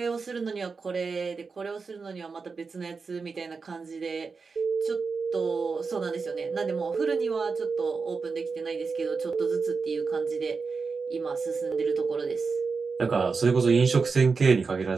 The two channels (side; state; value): left; quieter; 4.8 dB